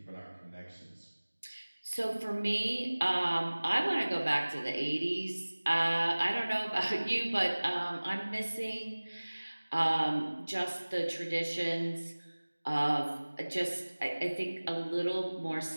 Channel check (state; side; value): inverted; both; correlation -1.00